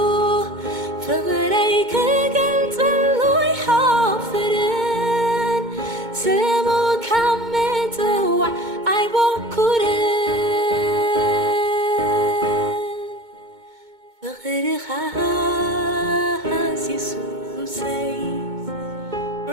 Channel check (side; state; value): left; late; 2.2 ms